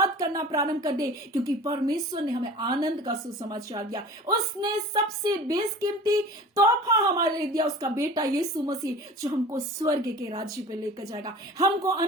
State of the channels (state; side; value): normal; both; correlation 0.40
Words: करना प्रारंभ कर दे, क्योंकि परमेश्वर ने हमें आनंद का सुसमाचार दिया। उसने सबसे बेशकीमती तोहफा हमारे लिए दिया, उसका बेटा यीशु मसीह, जो हमको स्वर्ग के राज्य पे लेकर जाएगा, हमको